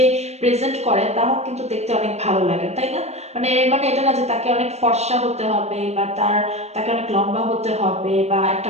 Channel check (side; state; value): left; late; 0.31 ms